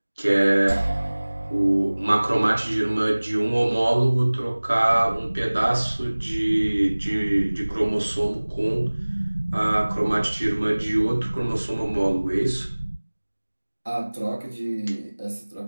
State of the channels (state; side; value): inverted; both; correlation -1.00